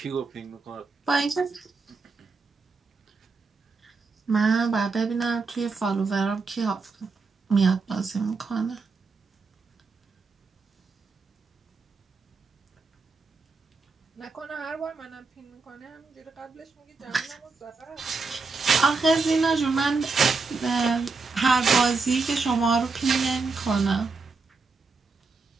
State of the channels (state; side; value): quieter; left; 4.3 dB